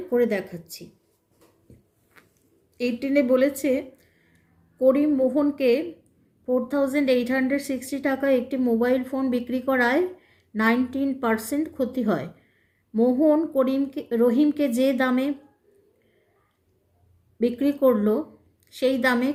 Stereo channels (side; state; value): both; identical; correlation 1.00